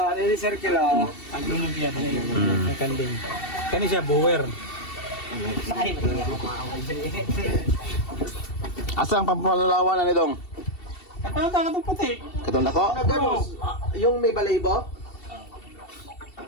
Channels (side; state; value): right; late; 2.7 ms